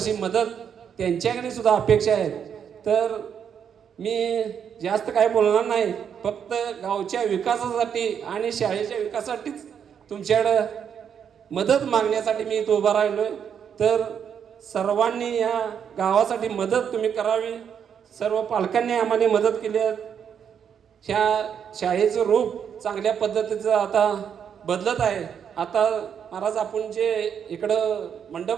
मदत त्यांच्याकडे सुद्धा अपेक्षा आहेत. तर मी जास्त काय बोलणार नाही, फक्त गावच्या विकासासाठी आणि शाळेच्या विकासासाठीच तुमच्याकडं मदत मागण्यासाठी मी इथं उभा राहिलोय. तर सर्वांनी या गावासाठी मदत तुम्ही करावी. सर्व पालकांनी आम्हाला मदत केली आहे. ह्या शाळेचं रूप चांगल्या पद्धतीचं आता बदलत आहे. आता महाराज आपण जे इकडं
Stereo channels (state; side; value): quieter; left; 7.9 dB